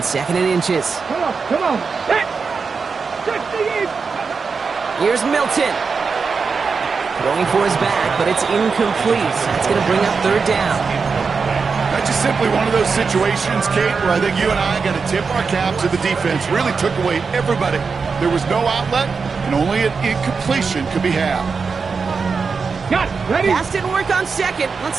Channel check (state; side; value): quieter; left; 5.1 dB